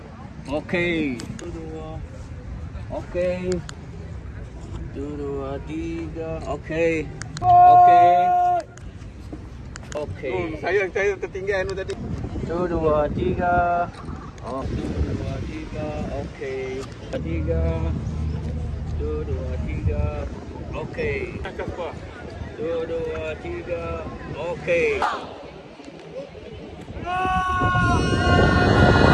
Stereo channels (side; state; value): both; identical; correlation 1.00